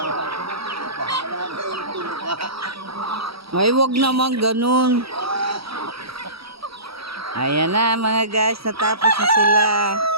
Bahala na yung tuluka. Ay, wag naman ganun. Ayan na mga guys, natapos na sila.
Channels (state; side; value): late; left; 0.76 ms